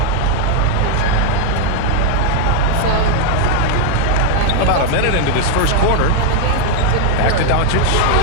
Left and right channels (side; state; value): both; different; correlation 0.00